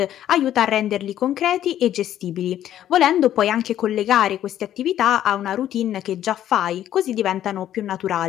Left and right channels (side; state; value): right; quieter; 11.6 dB